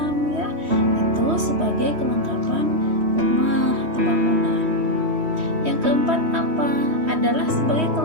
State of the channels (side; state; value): left; late; 3.1 ms